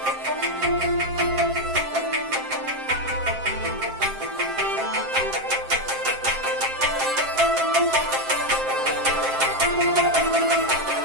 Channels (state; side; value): late; left; 7.6 ms